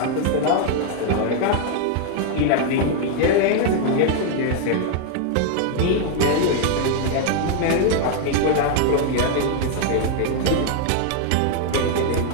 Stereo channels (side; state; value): both; different; correlation 0.00